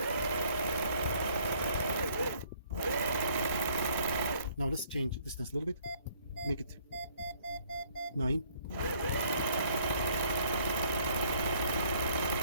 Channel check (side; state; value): both; inverted; correlation -0.61